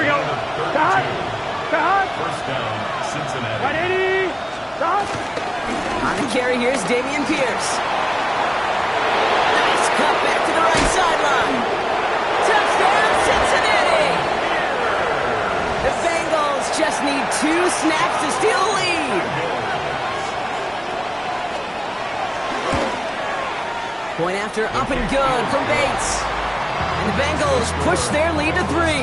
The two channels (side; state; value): both; identical; correlation 1.00